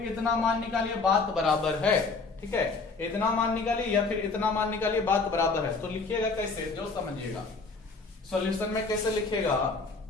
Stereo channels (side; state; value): right; quieter; 4.1 dB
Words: इतना मान निकालिए, बात बराबर है। ठीक है, इतना मान निकालिए या फिर इतना मान निकालिए, बात बराबर है। तो लिखिएगा कैसे, जो समझिएगा सॉल्यूशन में कैसे लिखेगा